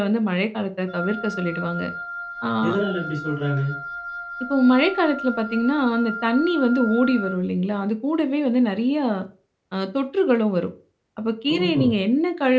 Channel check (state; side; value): identical; both; correlation 1.00